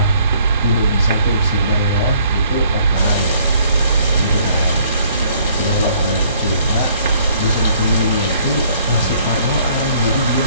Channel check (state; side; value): inverted; both; correlation -0.60